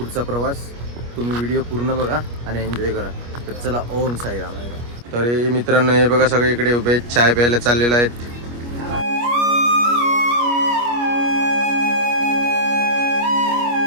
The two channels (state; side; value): late; left; 25 ms